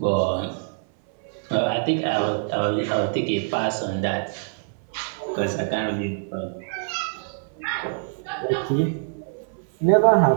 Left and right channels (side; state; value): left; silent; 61 dB below the other